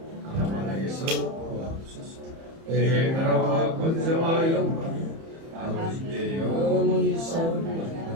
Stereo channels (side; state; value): left; late; 30 ms